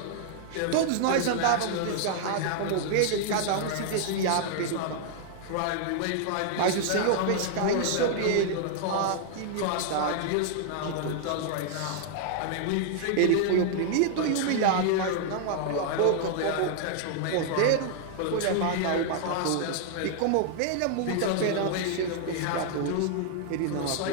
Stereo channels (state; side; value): different; both; correlation -0.01